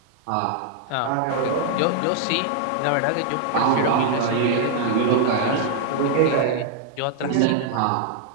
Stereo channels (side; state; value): both; different; correlation -0.01